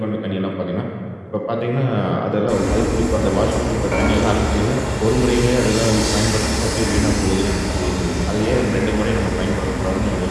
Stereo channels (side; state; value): both; identical; correlation 1.00